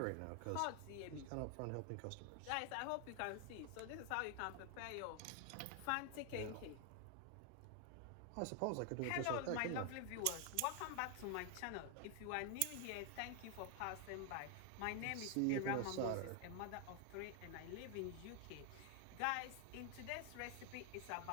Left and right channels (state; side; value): different; both; correlation 0.00